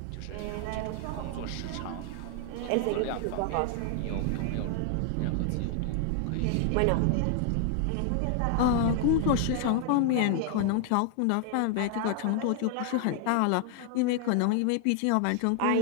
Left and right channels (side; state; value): both; different; correlation 0.00